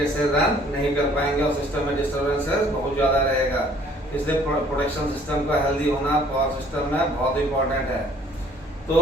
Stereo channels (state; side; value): normal; both; correlation 0.58